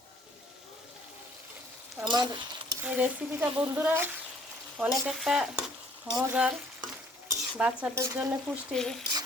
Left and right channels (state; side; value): normal; both; correlation 0.59